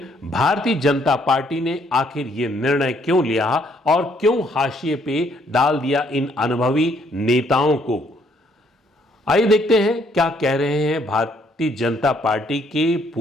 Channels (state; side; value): normal; both; correlation 0.68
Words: भारतीय जनता पार्टी ने आखिर यह निर्णय क्यों लिया और क्यों हाशिए पे डाल दिया इन अनुभवी नेताओं को? आइए देखते हैं क्या कह रहे हैं भारतीय जनता पार्टी के